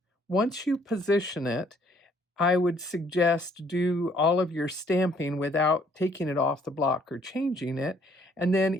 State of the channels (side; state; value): both; normal; correlation 0.63